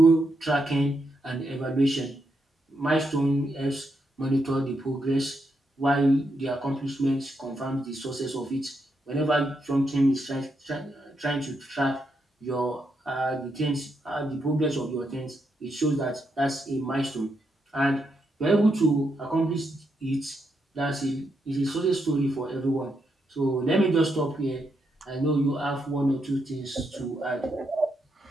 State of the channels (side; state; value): both; normal; correlation 0.81